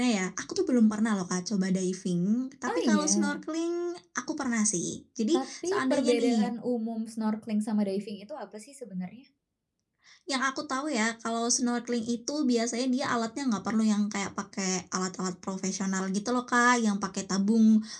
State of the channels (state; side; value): identical; both; correlation 1.00